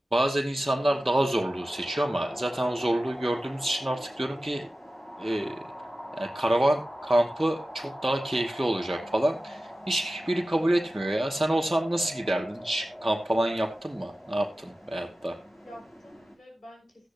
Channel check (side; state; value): both; normal; correlation 0.95